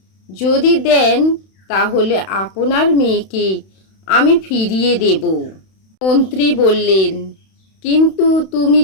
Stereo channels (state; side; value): late; right; 31 ms